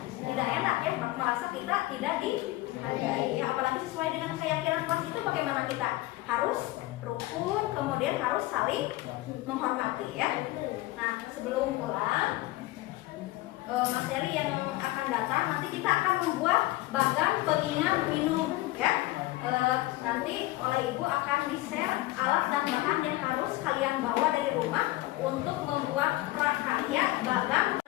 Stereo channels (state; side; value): quieter; right; 18.1 dB